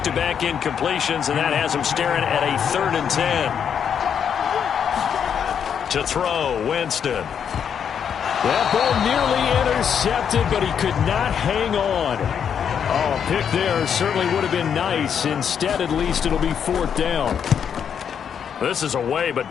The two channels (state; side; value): quieter; right; 7.8 dB